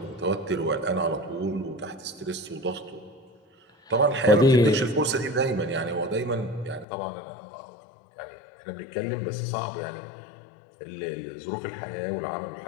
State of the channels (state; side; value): drops out; right; at 6.9 s